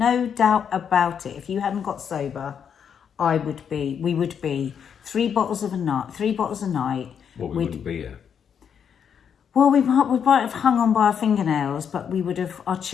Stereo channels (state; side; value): quieter; right; 7.7 dB